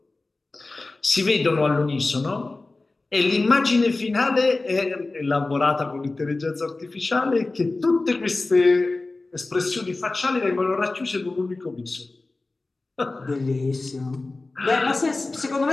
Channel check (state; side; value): quieter; right; 3.3 dB